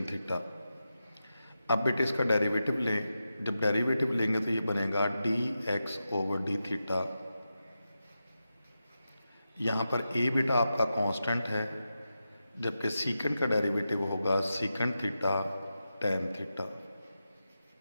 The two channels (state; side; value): inverted; both; correlation -0.90